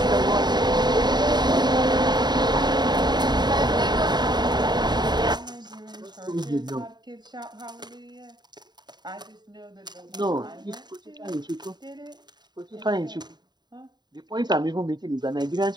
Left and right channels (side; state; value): left; late; 0.21 ms